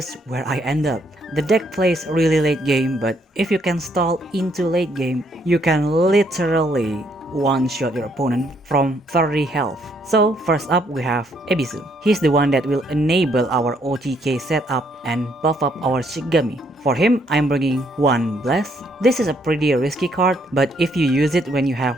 where I end up. The deck plays really late game, but if you can stall into late game, you can literally one-shot your opponent from 30 health. So first up we have Ebisu. He's the one that will enable our OTK setup and buff up our Shikigami. For him, I'm bringing one Bless. This is a pretty risky card, but if you use it when you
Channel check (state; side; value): normal; both; correlation 0.70